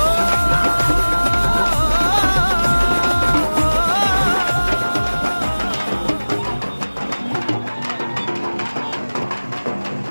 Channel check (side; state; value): both; inverted; correlation -1.00